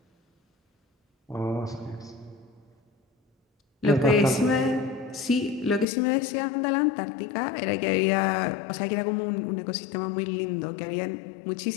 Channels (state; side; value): drops out; right; at 5.9 s